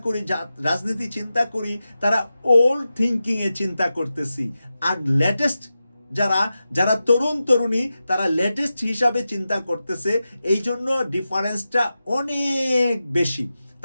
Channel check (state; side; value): inverted; both; correlation -0.92